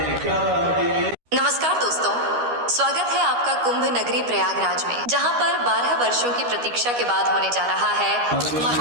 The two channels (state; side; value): late; left; 13 ms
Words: नमस्कार दोस्तों, स्वागत है आपका कुंभ नगरी प्रयागराज में, जहां पर 12 वर्षों की प्रतीक्षा के बाद होने जा रहा है